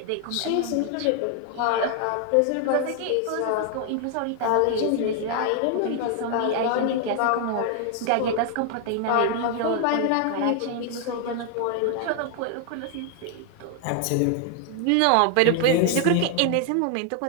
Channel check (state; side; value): different; both; correlation 0.00